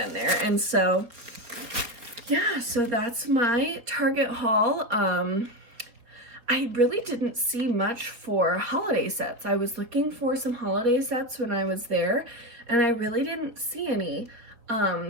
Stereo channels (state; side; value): late; left; 4.4 ms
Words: there. And so yeah, so that's my Target haul. I really didn't see much for holiday sets. I was looking for some holiday sets when I was there, and I really didn't see any.